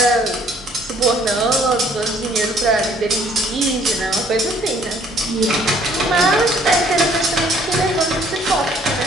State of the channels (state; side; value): normal; both; correlation 0.60